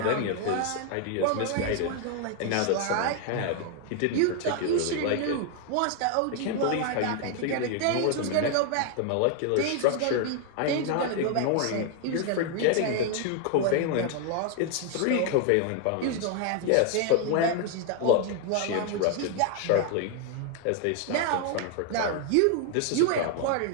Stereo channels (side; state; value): both; different; correlation 0.00